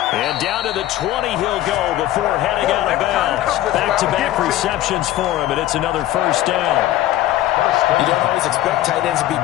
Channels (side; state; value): right; quieter; 14.1 dB